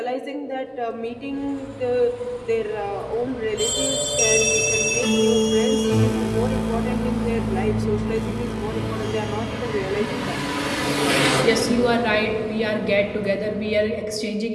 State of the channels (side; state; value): both; identical; correlation 1.00